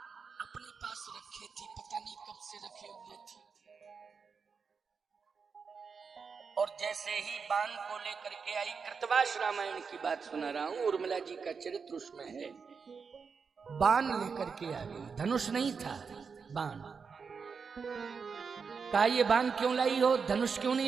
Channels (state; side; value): quieter; left; 5.6 dB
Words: अपने पास रखे थी, पता नहीं कब से रखे हुए थे। और जैसे ही बाण को लेकर के आई, कृतवास रामायण की बात सुना रहा हूं, उर्मिला जी का चरित्र उसमें है। बाण लेकर के आ गई, धनुष नहीं था, बाण। कहा ये बाण क्यों लाई हो, धनुष क्यों